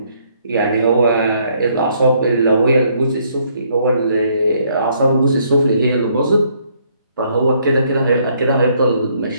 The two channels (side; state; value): both; inverted; correlation -0.68